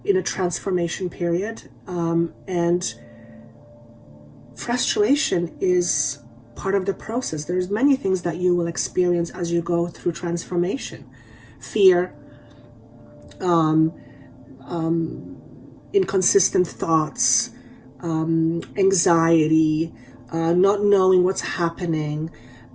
a transformation period, and frustration is part of the process. There's many things that you will experience as you go through transformation. Fear, inconsistent thoughts, anxiety, not knowing what's happening.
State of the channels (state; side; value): identical; both; correlation 1.00